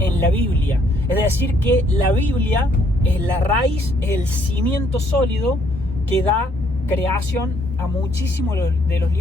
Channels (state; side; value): normal; both; correlation 0.68